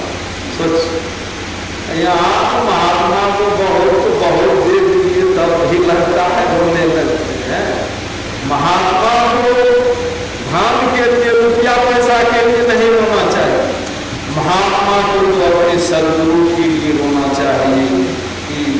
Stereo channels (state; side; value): identical; both; correlation 1.00